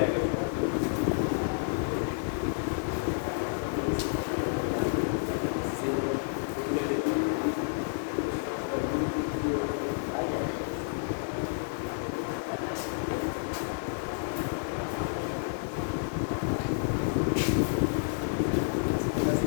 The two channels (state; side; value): silent; right; digital silence